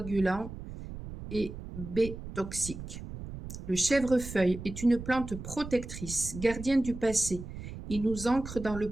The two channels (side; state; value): right; noise; rumble, 10 dB below the sound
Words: et B toxiques. Le chèvrefeuille est une plante protectrice, gardienne du passé. Il nous ancre dans le